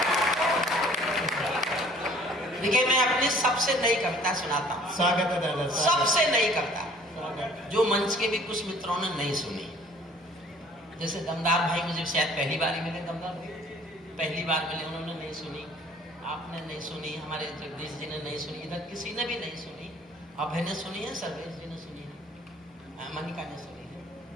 देखिए मैं अपनी सबसे नई कविता सुनाता हूँ। स्वागत है दादा। सबसे नई कविता जो मंच के भी कुछ मित्रों ने नहीं सुनी। जैसे दमदार भाई मुझे शायद पहली बार ही मिले, दमदार भाई पहली बार मिले, उन्होंने नहीं सुनी, आपने नहीं सुनी, हमारे जगदीश जी ने नहीं सुनी, इधर किसी ने भी नहीं सुनी। अभय ने सुनी है, सर्वेश जी ने सुनी है, मनिका ने सुनी है,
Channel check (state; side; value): normal; both; correlation 0.54